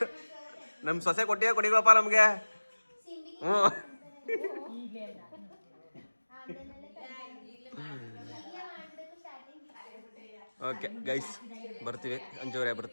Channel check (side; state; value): both; inverted; correlation -1.00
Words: ನಮ್ಮ ಸೊಸೆ ಕೊಡಿಗಳಪ್ಪ ನಮ್ಗೆ. ಹ್ಞೂ ಓಕೆ ಗೈಸ್, ಬರ್ತೀವಿ. ಅಂಜೂರೇ